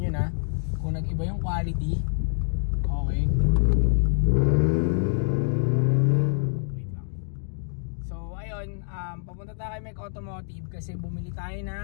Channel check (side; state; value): right; silent; digital silence